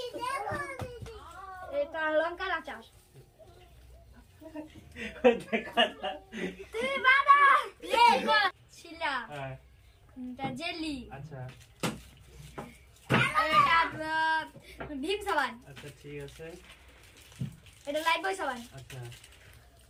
এটা লঙ্কার আচার। তুই বাবা ছিলা। এটা জেলি। আচ্ছা। এটা ভীম সাবান। আচ্ছা ঠিক আছে। এটা লাইট বয় সাবান। আচ্ছা।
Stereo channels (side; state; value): both; identical; correlation 1.00